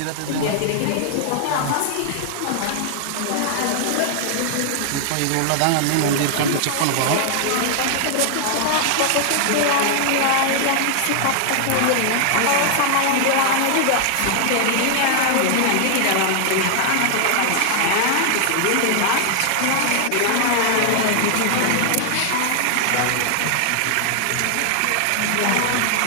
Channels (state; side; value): different; both; correlation 0.00